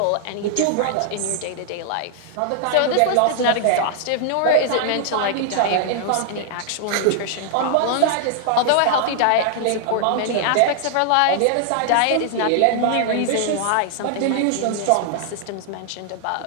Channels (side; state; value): both; different; correlation 0.00